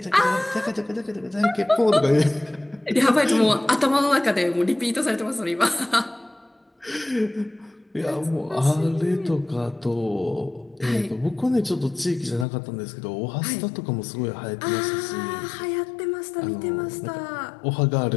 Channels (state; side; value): drops out; right; at 12.5 s